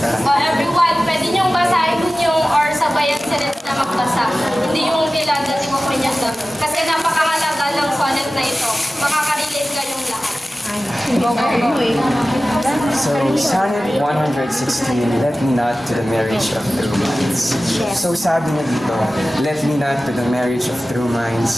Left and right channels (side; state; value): both; normal; correlation 0.96